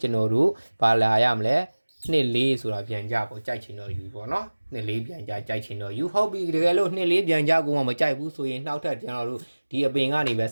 ကျွန်တော်တို့ဘာလာရမလဲ2 4ဆိုတာပြန်ကြပေါ့ကြိုက်ချင်တော့ယူပေါ့နော်2 4ပြန်ကြကြိုက်ချင်တော့ယူဟုတ်ပြီတကယ်လို့2 4ပြန်ကြကိုမှမကြိုက်ဘူးဆိုရင်နောက်ထပ်ကျွန်တော်တို့ဒီအပင်ကနေပဲ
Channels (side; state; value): both; inverted; correlation -1.00